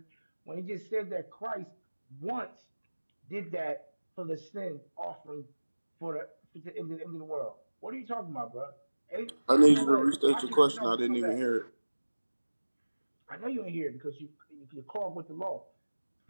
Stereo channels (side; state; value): both; inverted; correlation -1.00